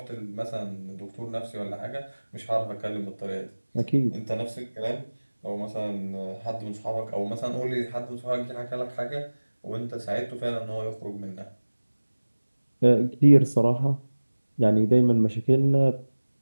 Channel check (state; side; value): inverted; both; correlation -1.00